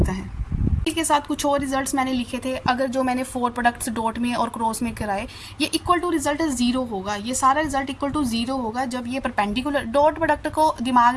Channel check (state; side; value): identical; both; correlation 1.00